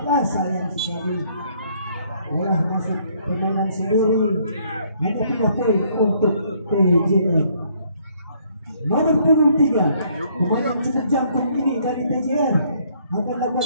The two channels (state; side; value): inverted; both; correlation -0.66